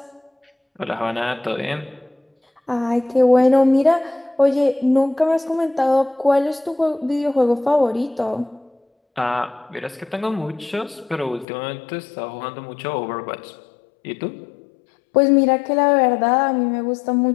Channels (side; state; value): right; drops out; at 11.5 s